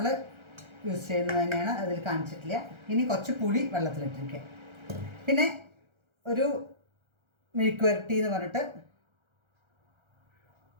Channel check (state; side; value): late; left; 1.3 ms